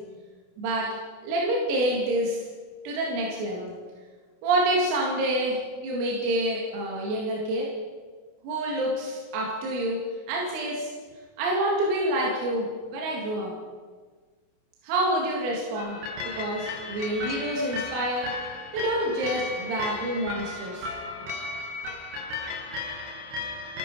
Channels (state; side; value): late; left; 28 ms